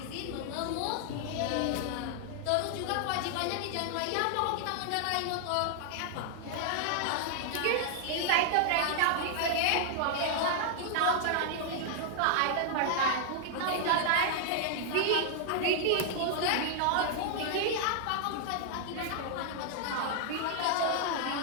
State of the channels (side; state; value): both; different; correlation 0.00